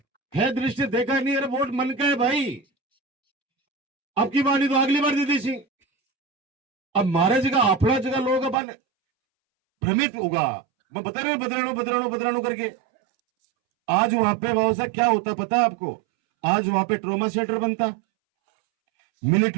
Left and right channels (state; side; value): drops out; left; at 8.6 s